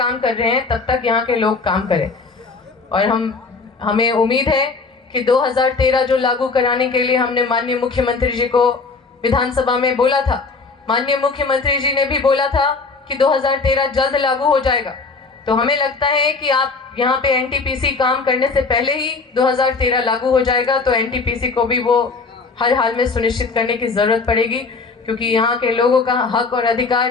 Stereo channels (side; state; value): right; quieter; 4.3 dB